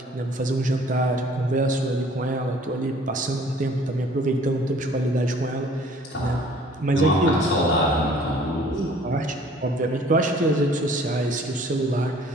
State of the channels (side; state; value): both; normal; correlation 0.54